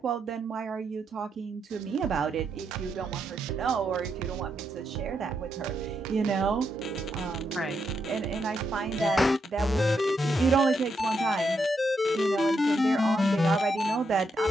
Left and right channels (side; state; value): both; normal; correlation 0.81